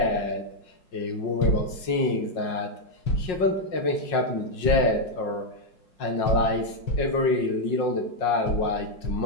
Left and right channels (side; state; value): right; late; 5.5 ms